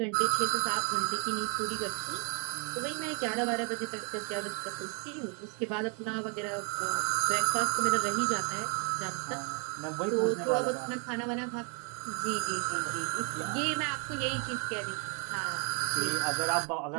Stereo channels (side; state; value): left; quieter; 38.6 dB